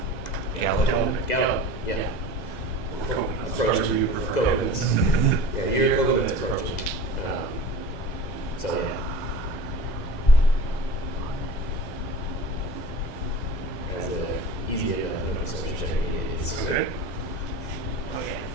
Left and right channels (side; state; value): right; late; 2.0 ms